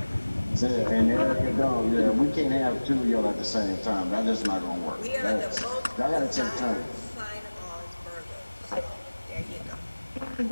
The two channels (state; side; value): inverted; both; correlation -1.00